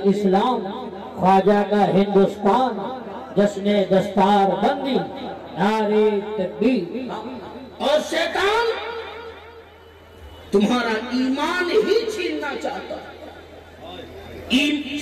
اسلام، خواجہ کا ہندوستان، جشن دستار بندی، نعرے تکبیر۔ اور شیطان تمہارا ایمان ہی چھیننا چاہتا ہے۔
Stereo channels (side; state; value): both; identical; correlation 1.00